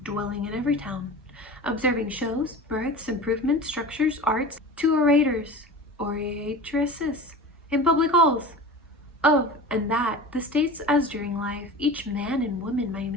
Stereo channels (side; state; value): both; normal; correlation 0.34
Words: dwelling in every town. Observing shows, births, improvements, structures, arts, to orators, oratresses, in public halls, Of and that, the states as during life, each man and woman my